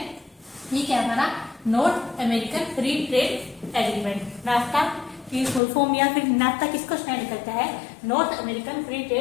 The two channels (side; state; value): right; drops out; at 5.6 s